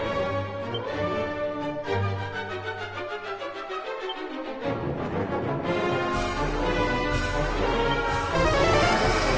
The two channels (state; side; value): identical; both; correlation 1.00